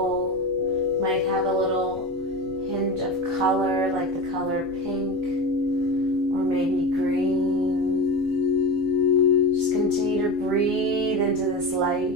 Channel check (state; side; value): normal; both; correlation 0.24